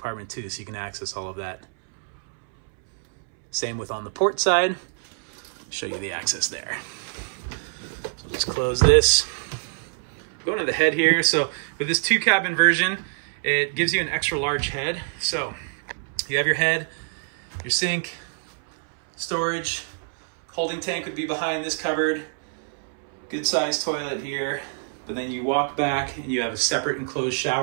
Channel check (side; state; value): left; silent; 62 dB below the other